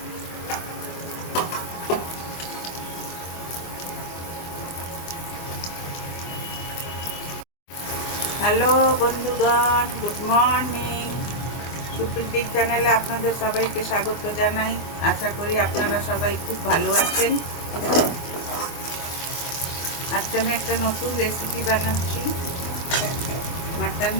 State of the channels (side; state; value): right; late; 24 ms